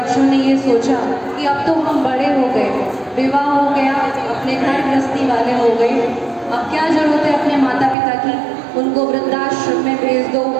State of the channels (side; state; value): left; drops out; at 8.0 s